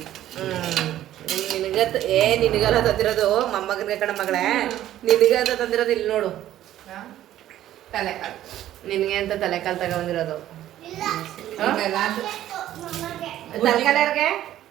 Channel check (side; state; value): left; quieter; 12.8 dB